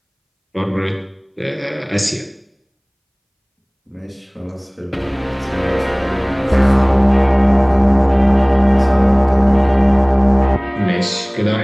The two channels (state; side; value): identical; both; correlation 1.00